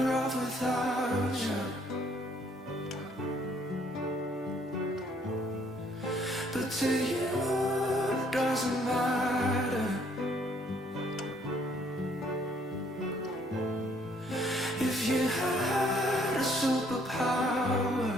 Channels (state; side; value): normal; both; correlation 0.65